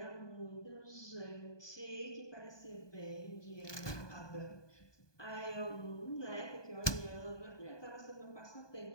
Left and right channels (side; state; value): right; late; 1.2 ms